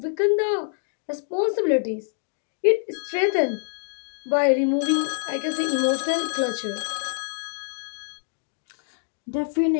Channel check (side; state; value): right; silent; digital silence